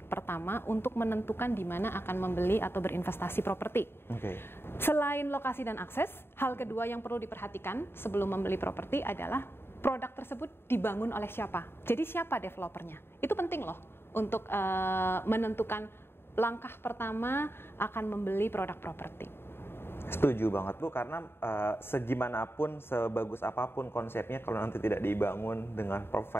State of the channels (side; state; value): right; late; 0.11 ms